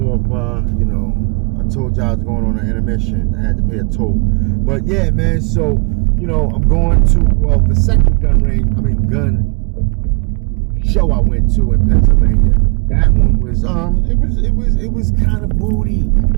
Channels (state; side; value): quieter; left; 38.0 dB